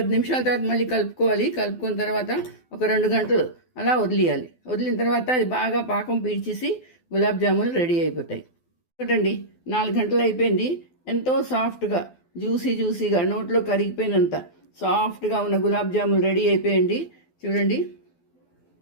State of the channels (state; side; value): late; right; 12 ms